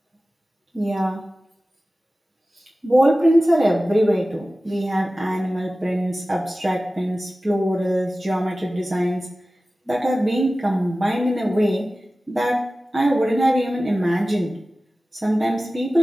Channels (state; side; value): normal; both; correlation 0.96